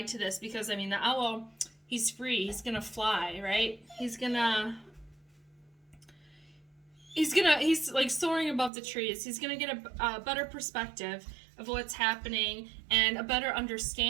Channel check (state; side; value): drops out; left; at 8.7 s